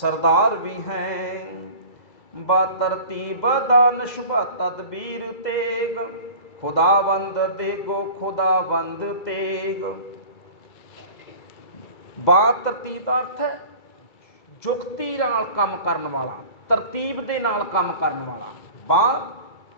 ਵੀ ਹੈ। ਬਾ ਤਰਤੀਬ ਦਾਨਿਸ਼ ਬਾ ਤਦਬੀਰ ਤੇਗ, ਖੁਦਾਵੰਦ ਦੇਗੋ ਖੁਦਾਵੰਦ ਤੇਗ। ਬਾ ਤਰਤੀਬ ਦਾ ਅਰਥ ਹੈ ਜੁਗਤੀ ਨਾਲ ਕੰਮ ਕਰਨ ਵਾਲਾ, ਤਰਤੀਬ ਦੇ ਨਾਲ ਕੰਮ ਕਰਨ ਵਾਲਾ। ਬਾ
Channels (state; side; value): late; right; 2.3 ms